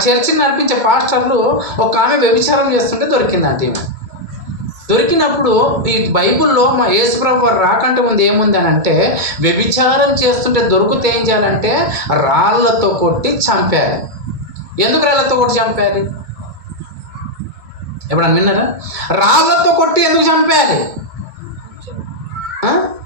చర్చిని నడిపించే పాస్టర్లు ఒక ఆమె వ్యభిచారం చేస్తుంటే దొరికిందంట. ఈమె దొరికినప్పుడు ఈ బైబిల్లో మా యేసుప్రభు వారు రాకంటే ముందు ఏముంది అని అంటే, వ్యభిచారం చేస్తుంటే దొరికితే ఏం చేయాలంటే రాళ్లతో కొట్టి చంపాలి. ఎందుకు రాళ్లతో కొట్టి చంపాలి? ఎప్పుడన్నా విన్నారా? రాళ్లతో కొట్టి ఎందుకు చంపాలి?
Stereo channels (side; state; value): left; late; 2.2 ms